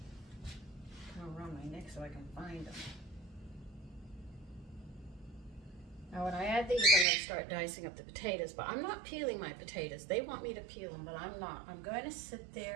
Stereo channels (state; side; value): drops out; left; at 7.1 s